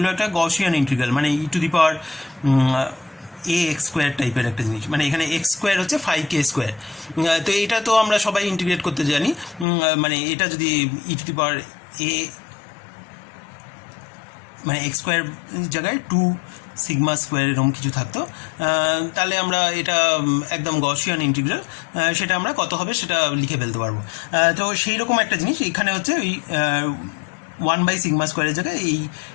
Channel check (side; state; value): right; drops out; at 9.7 s